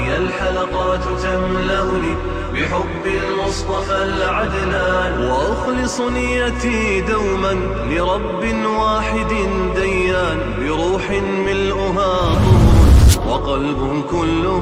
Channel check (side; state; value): both; identical; correlation 1.00